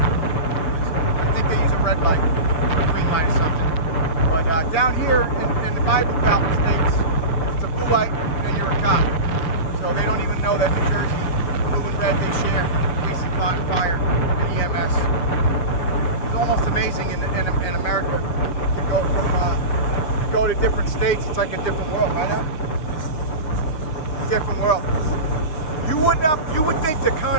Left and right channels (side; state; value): right; late; 6.7 ms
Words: I think they use a red light or a green light or something. But down here in the Bible Belt states, if it's a blue light, then you're a cop. So they don't even know that New Jersey, blue and red, they share police and fire and EMS. It's almost amazing in America. You go to different states, it's like a different world, right now? Different world. You would think the